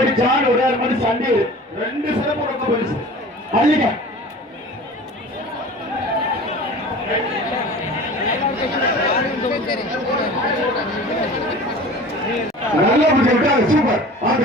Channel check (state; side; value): normal; both; correlation 0.40